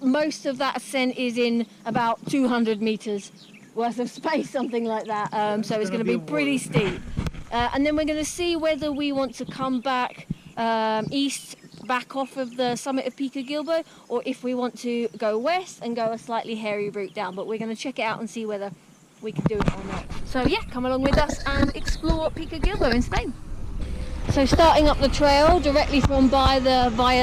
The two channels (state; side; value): identical; both; correlation 1.00